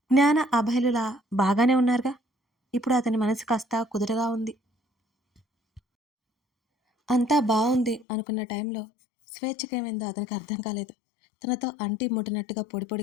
జ్ఞాన అభయలులా బాగానే ఉన్నారుగా. ఇప్పుడు అతని మనసు కాస్త కుదురుగా ఉంది. అంతా బావుంది అనుకున్న టైంలో స్వేచ్ఛకేమైందో అతనికి అర్థం కాలేదు. తనతో అంటి ముట్టినట్టుగా పొడి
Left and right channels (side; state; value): right; drops out; at 8.1 s